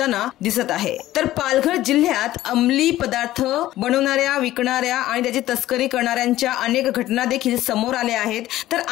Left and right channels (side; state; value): right; quieter; 14.9 dB